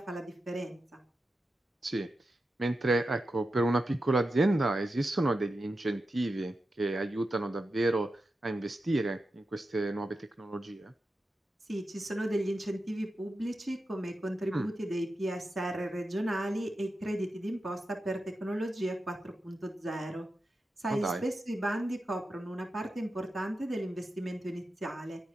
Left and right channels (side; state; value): both; normal; correlation 0.90